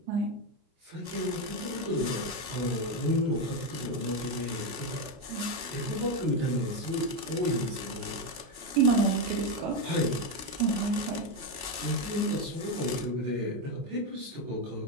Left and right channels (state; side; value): late; left; 23 ms